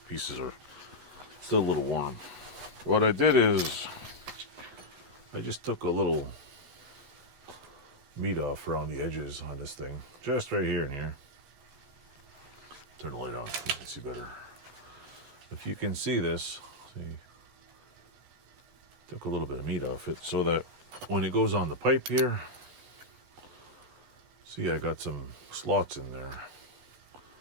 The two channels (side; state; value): left; late; 8.1 ms